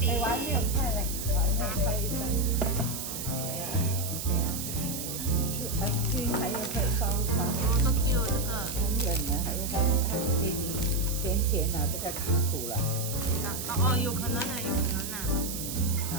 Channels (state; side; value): noise; right; hiss, 6 dB below the sound